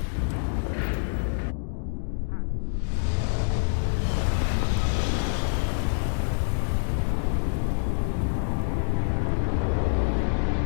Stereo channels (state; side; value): silent; right; digital silence